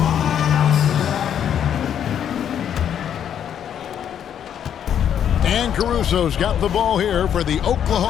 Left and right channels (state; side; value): quieter; right; 9.2 dB